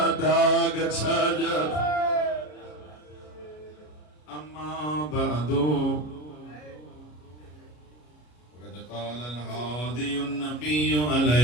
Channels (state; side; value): late; right; 33 ms